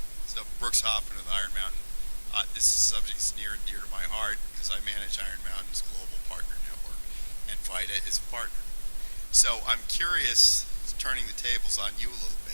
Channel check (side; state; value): both; inverted; correlation -1.00